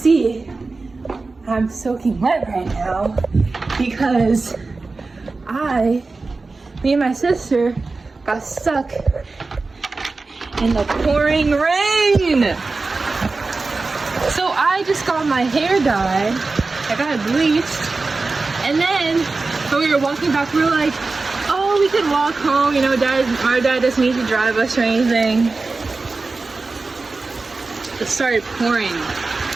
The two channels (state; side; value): quieter; left; 3.7 dB